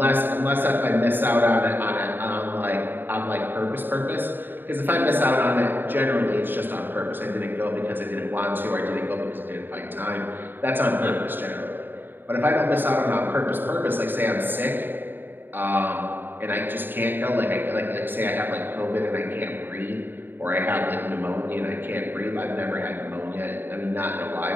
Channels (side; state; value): left; late; 0.095 ms